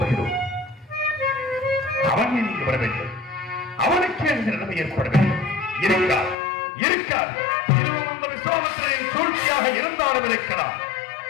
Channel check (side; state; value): right; drops out; at 6.4 s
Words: அவன் நீங்க வர வேண்டும், அவனுக்கு இந்த நிலைமை ஏற்பட வேண்டும். இருக்கார் இருக்கார் இதுவும் இந்த விசுவாமத்திரின் சூழ்ச்சியாக இருந்தாலும் இருக்கலாம்.